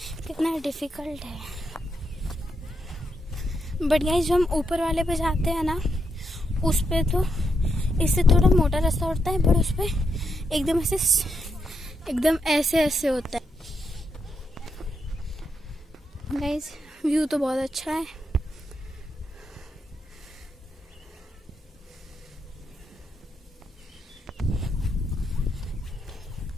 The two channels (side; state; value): both; normal; correlation 0.81